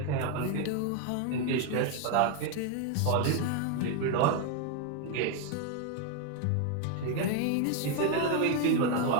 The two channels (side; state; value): both; different; correlation 0.01